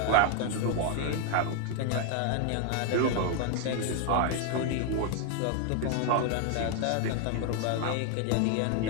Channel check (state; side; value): different; both; correlation 0.00